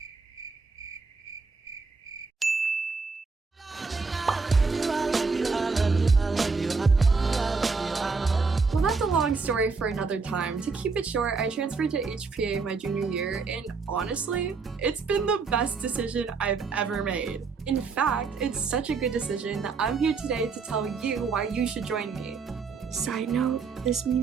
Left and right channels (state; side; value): quieter; left; 4.7 dB